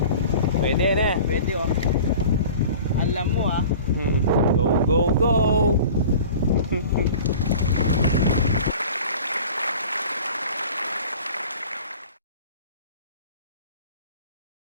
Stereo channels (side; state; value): both; inverted; correlation -0.41